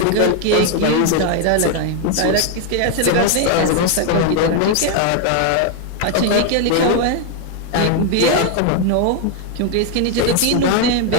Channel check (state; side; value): different; both; correlation 0.01